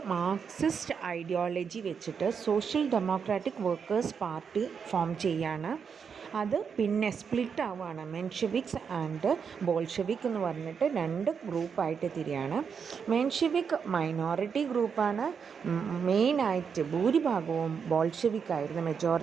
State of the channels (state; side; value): quieter; left; 6.5 dB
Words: മാർക്സിസ്റ്റ് ഐഡിയോളജി വെച്ചിട്ട് social democratic workers party form ചെയ്യാണ്. അത് പിന്നെ സ്പ്ലിറ്റ് ആവുകയാണ്. മെൻഷെവിക്സ് ആൻഡ് ബോൾഷെവിക് എന്ന് പറഞ്ഞിട്ട് രണ്ട് ഗ്രൂപ്പായിട്ട് തിരിയാണ്. മെൻഷെവിക് മൈനോറിറ്റി ഗ്രൂപ്പാണ്. മെയിനായിട്ട് ഭൂരിഭാഗവും ബോൾഷെവിക് ആയിരുന്നു,